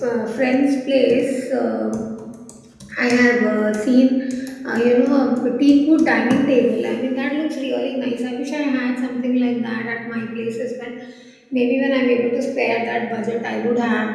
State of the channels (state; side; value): identical; both; correlation 1.00